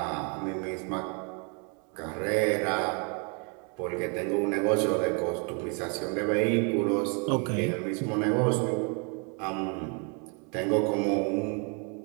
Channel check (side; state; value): left; quieter; 36.8 dB